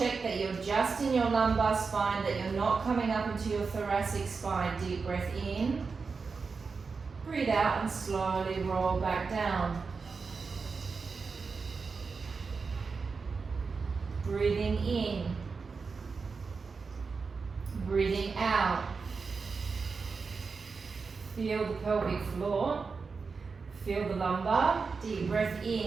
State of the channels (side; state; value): left; quieter; 4.8 dB